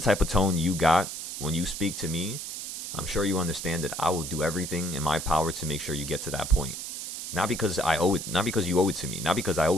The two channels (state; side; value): noise; right; hiss, 7 dB below the sound